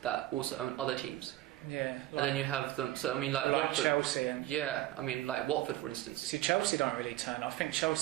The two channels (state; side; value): quieter; left; 15.3 dB